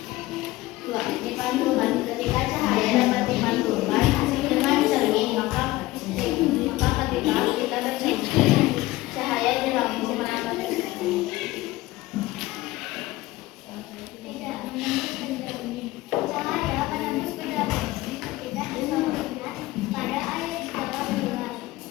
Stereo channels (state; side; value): quieter; right; 18.3 dB